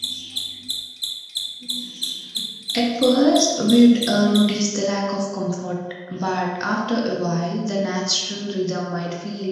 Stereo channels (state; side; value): identical; both; correlation 1.00